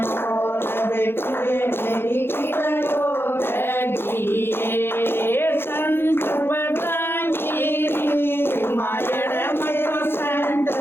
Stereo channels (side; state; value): right; late; 0.11 ms